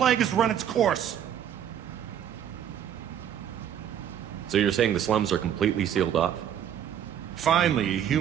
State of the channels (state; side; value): quieter; left; 9.8 dB